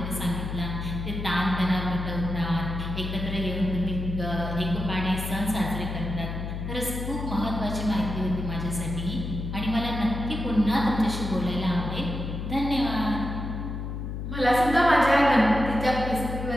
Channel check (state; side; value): noise; left; hum, 5 dB below the sound